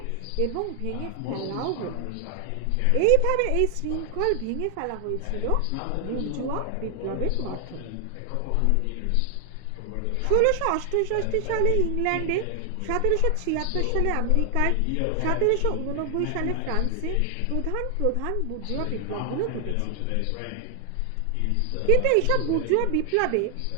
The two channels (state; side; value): different; both; correlation 0.00